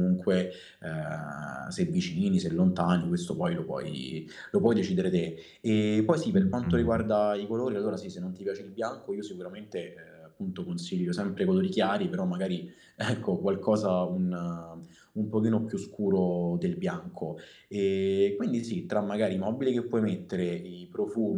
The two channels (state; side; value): identical; both; correlation 1.00